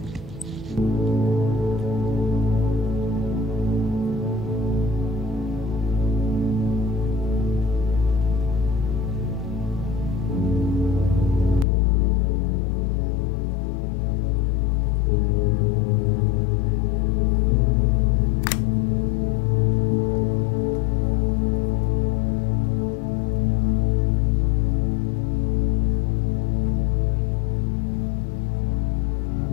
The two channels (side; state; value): right; drops out; at 11.7 s